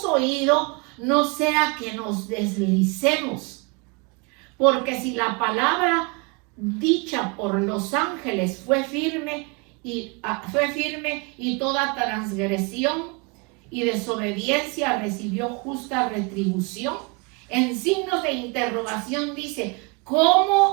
oído, no sea que nos deslicemos. Porque si la palabra dicha por los ángeles fue firme y toda transgresión y desobediencia recibió justa retribución, en signos de interrogación dice:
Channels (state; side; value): quieter; left; 30.1 dB